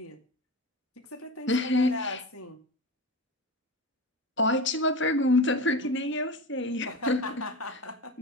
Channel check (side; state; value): both; normal; correlation 0.27